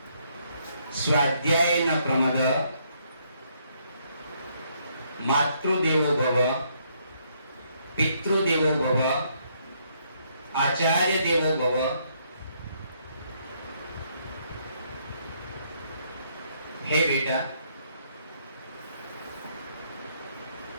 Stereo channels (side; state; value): both; inverted; correlation -0.71